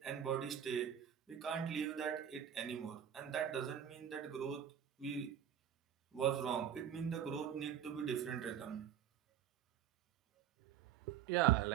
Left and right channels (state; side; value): quieter; left; 9.5 dB